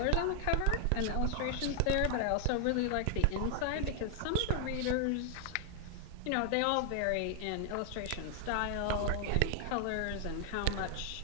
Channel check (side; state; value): both; different; correlation 0.00